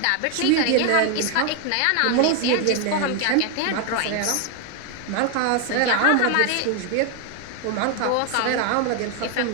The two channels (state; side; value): different; both; correlation 0.01